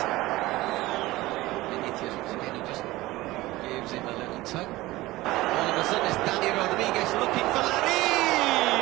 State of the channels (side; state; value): left; quieter; 18.5 dB